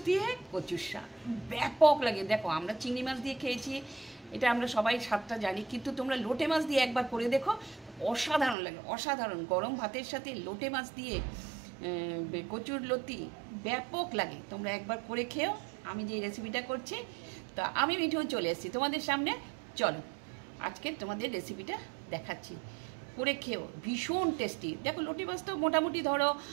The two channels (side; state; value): left; drops out; at 8.6 s